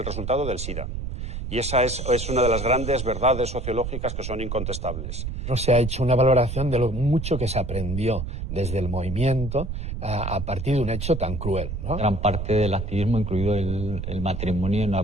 resultado del SIDA. Y esa es una de las grandes verdades sociológicas que son incontestables. No se ha hecho una valoración de lo mucho que se aprendió desde el movimiento a partir de un hecho tan cruel, ¿no? Gran parte del activismo, incluido el matrimonio, no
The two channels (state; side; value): noise; right; rumble, 5 dB below the sound